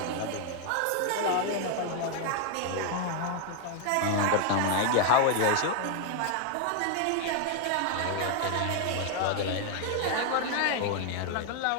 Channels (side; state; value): both; different; correlation 0.00